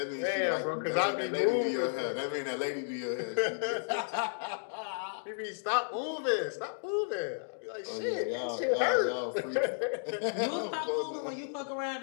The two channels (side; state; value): right; silent; digital silence